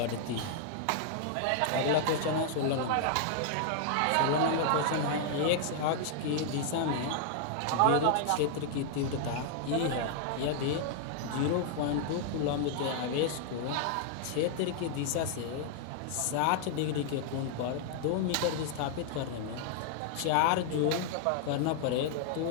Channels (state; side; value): different; both; correlation -0.01